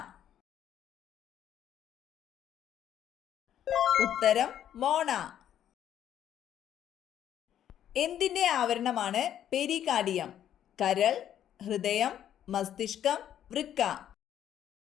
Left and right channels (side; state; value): right; quieter; 10.5 dB